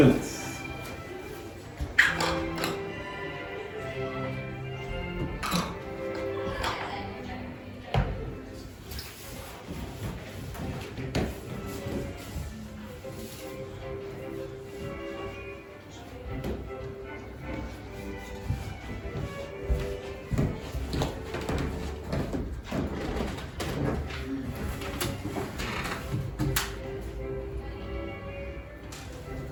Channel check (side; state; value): both; identical; correlation 1.00